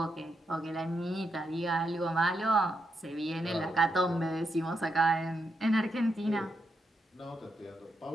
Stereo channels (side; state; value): both; normal; correlation 0.82